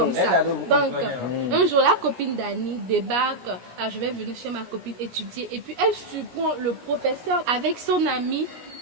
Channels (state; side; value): late; left; 17 ms